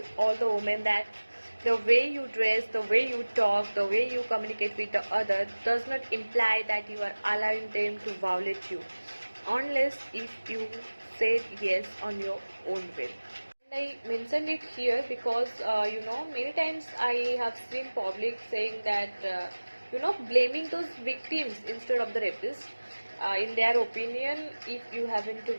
all the women, that the way you dress, the way you talk, the way you communicate with the other does not imply that you are allowing them to violate you, unless if you said yes on your own will. I mentioned it here because many times I have seen public saying that blaming those victims instead of the rapists. In their opinion, if you happen to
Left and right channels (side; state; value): both; inverted; correlation -1.00